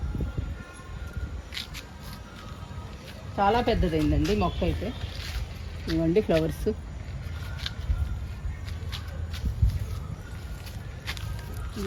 చాలా పెద్దదైందండి మొక్క అయితే. ఇవ్వండి ఫ్లవర్స్.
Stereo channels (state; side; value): identical; both; correlation 1.00